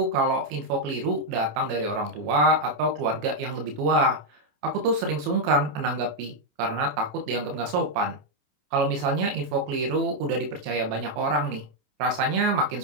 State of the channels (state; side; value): late; left; 27 ms